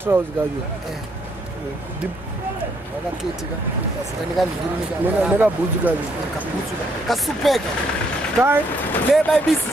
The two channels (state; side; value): normal; both; correlation 0.71